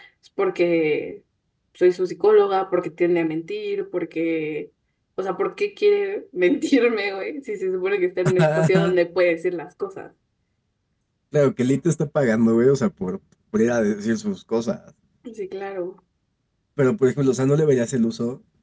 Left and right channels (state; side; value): identical; both; correlation 1.00